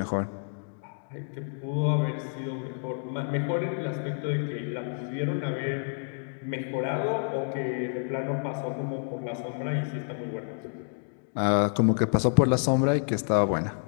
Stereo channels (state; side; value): silent; right; digital silence